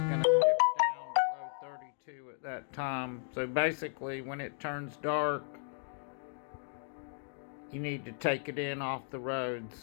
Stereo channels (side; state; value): right; silent; 55 dB below the other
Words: dip down below 32 at that time. So basically, when it turns dark, you need to take it in off the